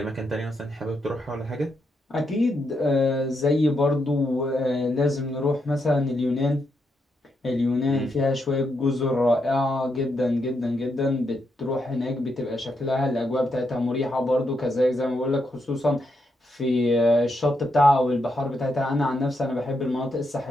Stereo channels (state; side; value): normal; both; correlation 0.81